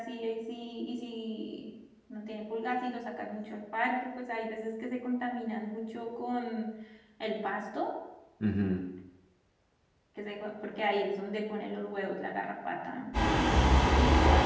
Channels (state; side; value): identical; both; correlation 1.00